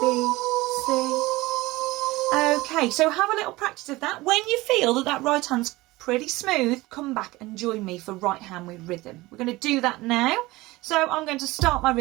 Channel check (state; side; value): quieter; left; 20.2 dB